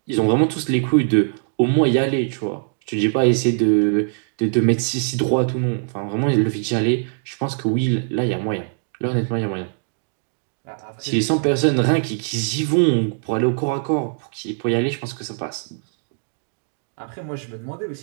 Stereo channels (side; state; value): left; silent; digital silence